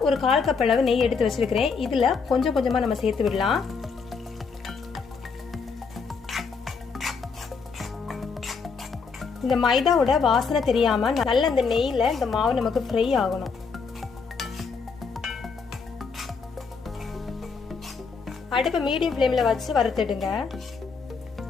ஒரு 1/4 கப் அளவு நெய் எடுத்து வச்சிருக்கிறேன். இதுல கொஞ்சம் கொஞ்சமா நம்ம சேர்த்து விடலாம். இந்த மைதாவோட வாசனை தெரியாம நல்ல இந்த நெய்ல இந்த மாவு நமக்கு ஃப்ரை ஆகணும். அடுப்பு மீடியம் ஃப்ளேம்ல வச்சு வறுத்துடுங்க.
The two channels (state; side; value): quieter; right; 5.2 dB